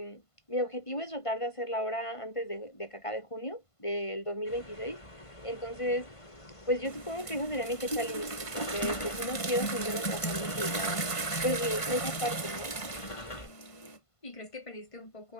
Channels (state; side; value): late; right; 1.5 ms